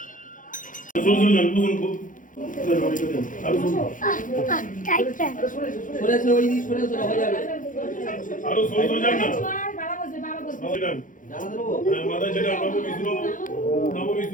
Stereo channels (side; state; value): right; late; 0.38 ms